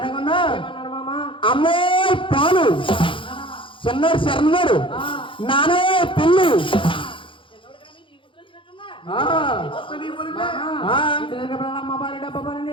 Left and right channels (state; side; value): late; right; 0.25 ms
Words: అమ్మే పాలు చిన్నోడు శరణుడు నానే పెళ్ళి